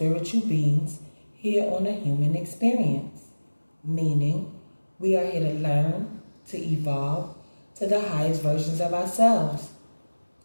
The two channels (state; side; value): inverted; both; correlation -1.00